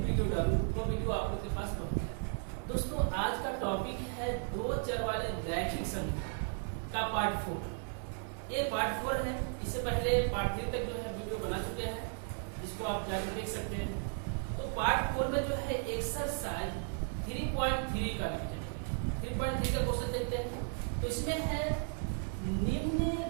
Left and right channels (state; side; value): silent; left; 54 dB below the other